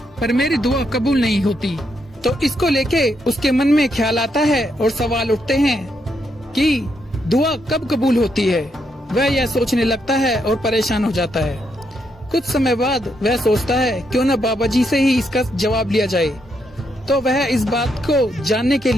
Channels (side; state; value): both; normal; correlation 0.79